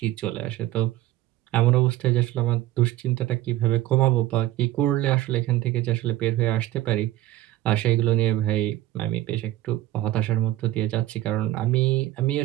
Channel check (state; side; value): quieter; left; 15.1 dB